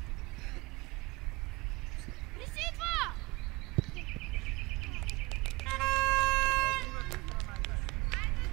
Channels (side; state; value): left; quieter; 22.4 dB